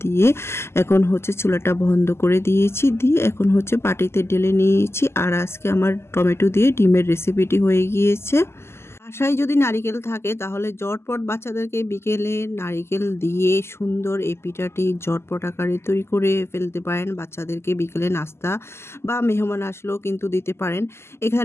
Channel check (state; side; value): late; right; 0.12 ms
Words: দিয়ে এখন চুলাটা বন্ধ করে দিয়েছি। দিয়ে এখন বাটিতে ঢেলে নিয়েছি। আর আজকে আমার টমেটো দিয়ে ডিমের রেসিপিটি হয়ে গিয়েছে। বাসায় যদি নারিকেল থাকে তাহলে ঝটপট বাচ্চাদেরকে বিকেলে নারিকেল দিয়ে সুন্দর এই পিঠাটি ঝটপট আকারে তৈরি করে ফেলতে পারেন। বাচ্চাদেরকে বিকেলে নাস্তা বা মেহমান আসলেও কিন্তু দিতে পারেন।